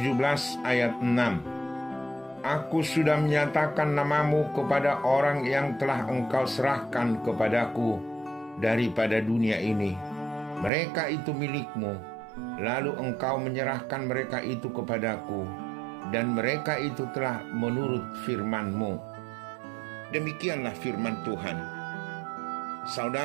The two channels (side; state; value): left; drops out; at 10.7 s